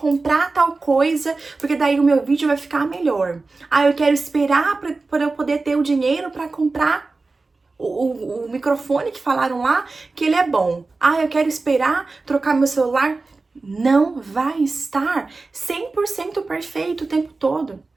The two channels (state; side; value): quieter; left; 3.7 dB